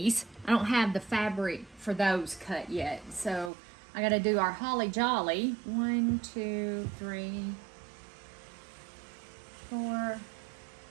I don't have the fabric for those cut yet, so I got to do our holly jolly. 1, 2, 3, 4,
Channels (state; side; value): drops out; left; at 3.5 s